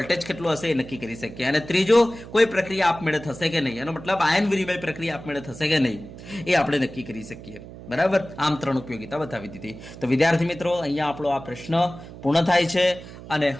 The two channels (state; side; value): noise; right; hum, 15 dB below the sound